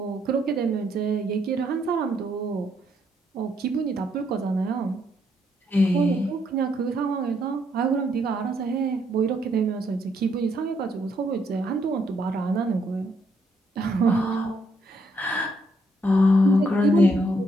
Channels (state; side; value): normal; both; correlation 0.73